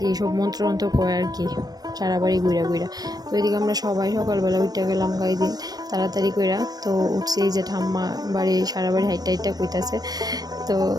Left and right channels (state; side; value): late; left; 0.19 ms